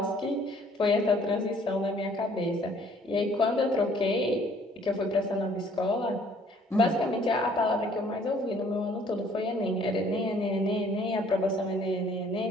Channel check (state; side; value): normal; both; correlation 0.59